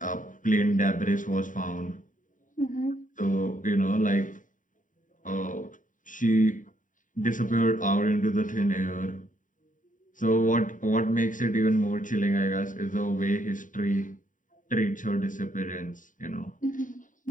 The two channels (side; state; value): right; late; 0.38 ms